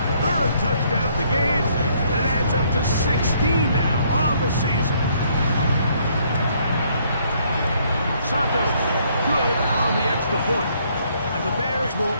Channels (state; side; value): inverted; both; correlation -0.67